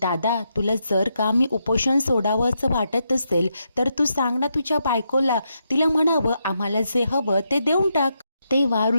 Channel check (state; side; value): inverted; both; correlation -0.82